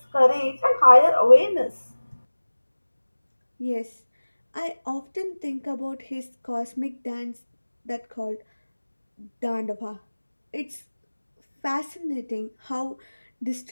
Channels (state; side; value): inverted; both; correlation -1.00